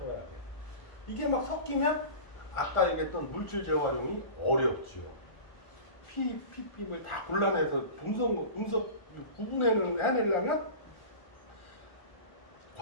돼. 이게 막 섞이면 아까 얘기했던 물질 재활용이 어렵죠. PPM을 다 골라내서 분석 해내려면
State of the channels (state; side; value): late; right; 1.4 ms